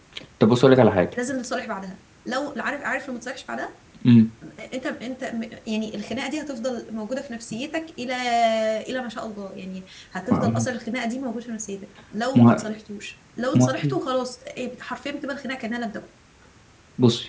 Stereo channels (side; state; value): both; identical; correlation 1.00